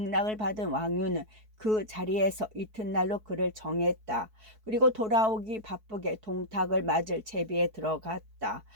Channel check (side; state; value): left; late; 4.6 ms